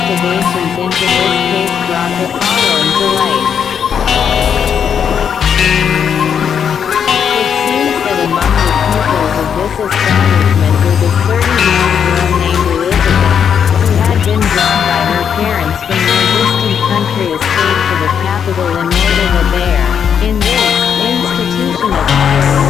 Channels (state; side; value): quieter; right; 7.7 dB